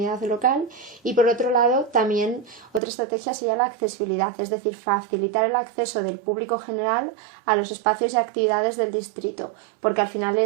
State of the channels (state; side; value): drops out; left; at 2.8 s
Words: local. Y por otro lado, también otra estrategia sería la accesibilidad, es decir, facilitar el acceso del público general a los espacios y actividades del distrito, porque al final